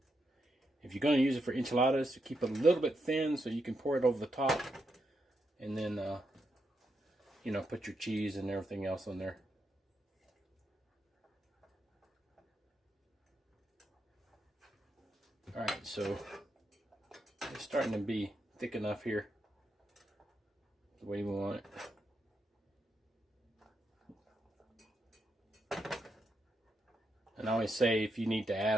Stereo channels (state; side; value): normal; both; correlation 0.83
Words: If you're going to use it for enchiladas, keep it a little bit thin so you can pour it over the top. And then, you know, put your cheese and everything else on there. Alright, so it's starting to be thick enough here, the way we want it. And I always say if you need to add a